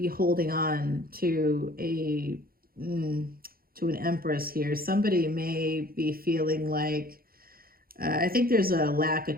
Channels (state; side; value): late; left; 0.43 ms